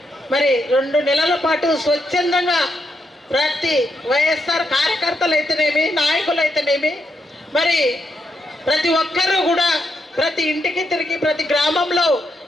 మరి 2 నెలల పాటు స్వచ్ఛందంగా ప్రతి వైఎస్ఆర్ కార్యకర్తలు అయితేనేమి, నాయకులు అయితేనేమి, మరి ప్రతి ఒక్కరూ కూడా ప్రతి ఇంటికి తిరిగి ప్రతి గ్రామంలో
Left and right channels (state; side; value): normal; both; correlation 0.81